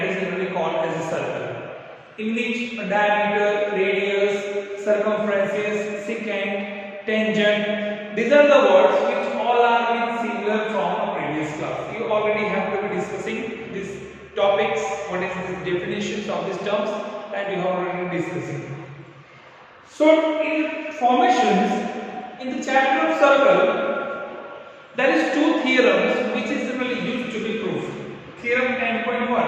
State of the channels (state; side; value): identical; both; correlation 1.00